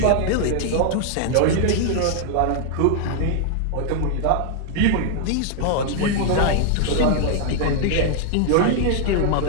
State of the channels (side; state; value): both; different; correlation 0.00